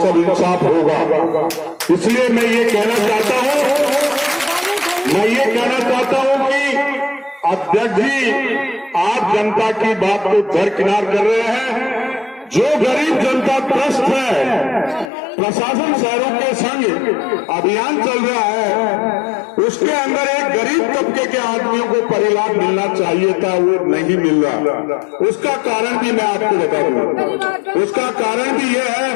सब इंसाफ होगा। इसलिए मैं ये कहना चाहता हूं कि अध्यक्ष जी आप जनता की बात को दरकिनार कर रहे हैं। जो गरीब जनता त्रस्त है, प्रशासन शहरों के संग अभियान चल रहा है, उसके अंदर एक गरीब तबके के आदमियों को परिलाभ मिलना चाहिए था, वो नहीं मिल रहा। उसका कारण भी मैं आपको बता दूं, उसका कारण भी यह है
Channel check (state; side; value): drops out; right; at 15.1 s